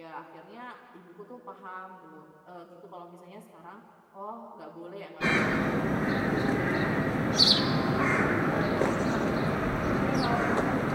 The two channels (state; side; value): identical; both; correlation 1.00